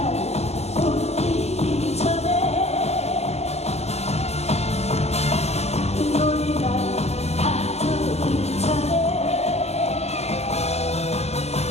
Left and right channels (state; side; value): late; right; 0.31 ms